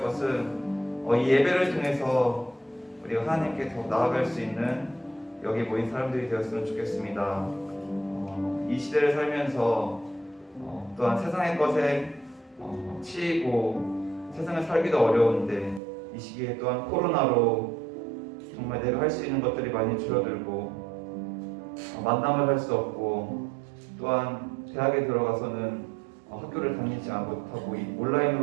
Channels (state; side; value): drops out; left; at 15.8 s